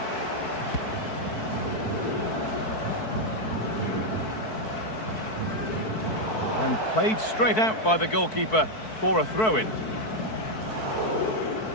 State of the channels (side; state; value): right; late; 4.6 ms